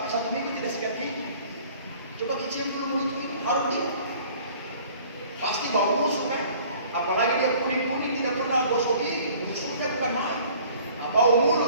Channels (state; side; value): inverted; both; correlation -0.51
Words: 1 minggu tidak sikat gigi. Coba kecil dulu mulut ini, harus dulu. Pasti bau busuk kan? Apalagi dia kuning-kuning tidak pernah gosok gigi, busuknya bukan main. Nah, bau